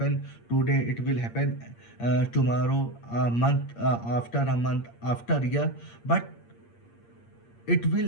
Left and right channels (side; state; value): right; late; 8.6 ms